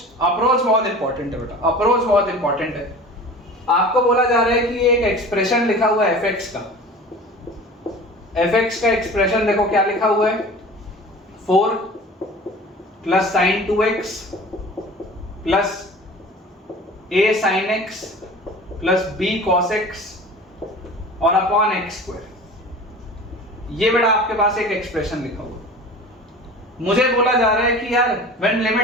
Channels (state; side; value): normal; both; correlation 0.39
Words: बहुत इंपॉर्टेंट है बेटा, अप्रोच बहुत इंपॉर्टेंट है। आपको बोला जा रहा है कि एक एक्सप्रेशन लिखा हुआ है fx का एक्सप्रेशन देखो क्या लिखा हुआ है, 4 plus sine 2x plus a sine x plus b cos x और अपॉन x स्क्वायर। ये बेटा आपके पास एक एक्सप्रेशन लिखा हुआ। मुझे बोला जा रहा है कि यार when